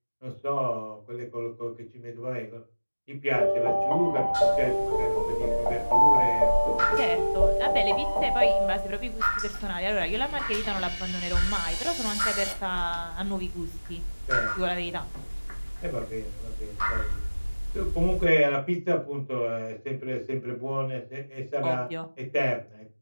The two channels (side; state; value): both; inverted; correlation -1.00